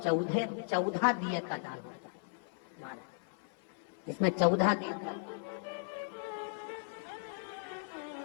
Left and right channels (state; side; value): silent; right; 54 dB below the other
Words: 14 दिए का दान होता है महाराज। इसमें 14 दीप का,